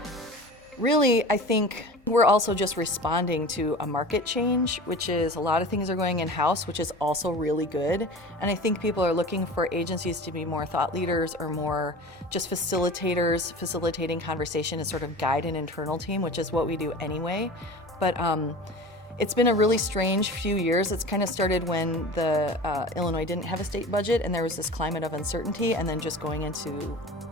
really, I think we're also just responding to a market change, which is a lot of things are going in-house, which is also really good. And I think people are looking for agencies to be more thought leaders or more just facilitators, facilitating conversation and sort of guide an internal team, which is what we do anyway. But it's been a really strange few years. It's kind of started when Illinois didn't have a state budget and there was this climate of uncertainty, and then just going into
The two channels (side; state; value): both; normal; correlation 0.36